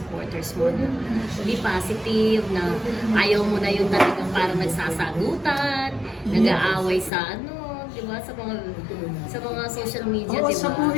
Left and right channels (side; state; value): right; drops out; at 7.1 s